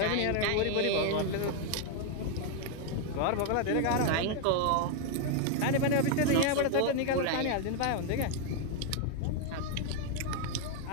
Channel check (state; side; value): different; both; correlation 0.00